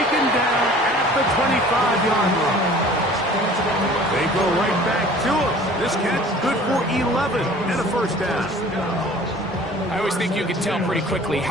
down at the 25-yard line. They go right back to him. This catch good for 11 and a 1st down. I always think you can tell pretty quickly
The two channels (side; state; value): both; normal; correlation 0.48